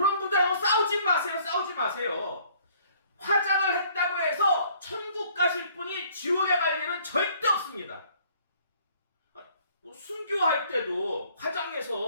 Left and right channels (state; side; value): inverted; both; correlation -0.58